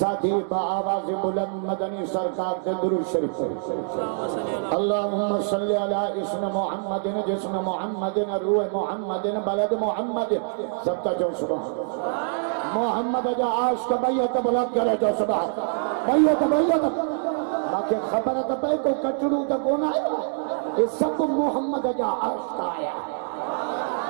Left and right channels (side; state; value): left; silent; digital silence